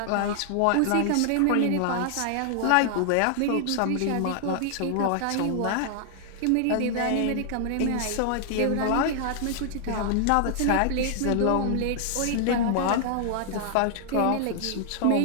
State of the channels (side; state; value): both; different; correlation -0.01